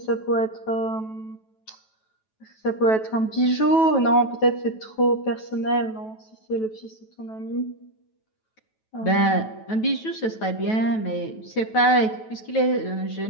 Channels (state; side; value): late; right; 9.2 ms